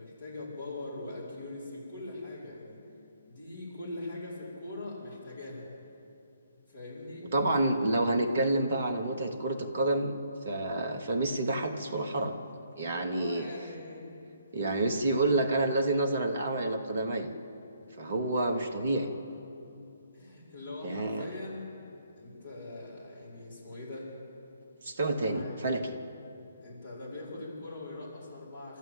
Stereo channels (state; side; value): inverted; both; correlation -0.69